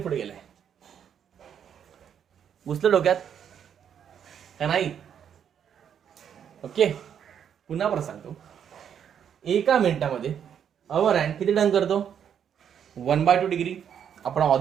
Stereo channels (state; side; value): quieter; left; 8.5 dB